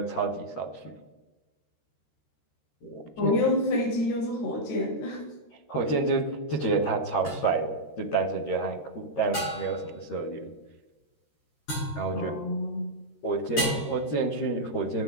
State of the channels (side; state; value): right; late; 13 ms